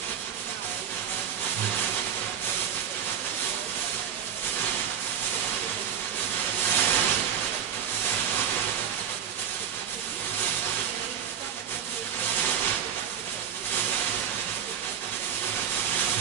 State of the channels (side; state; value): left; quieter; 8.4 dB